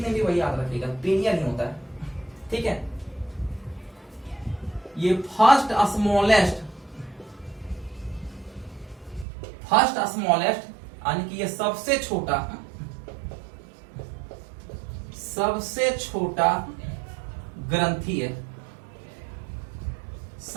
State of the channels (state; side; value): drops out; left; at 9.2 s